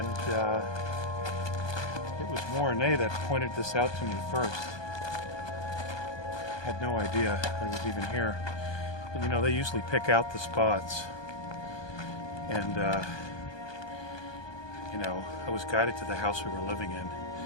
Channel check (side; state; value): right; late; 1.2 ms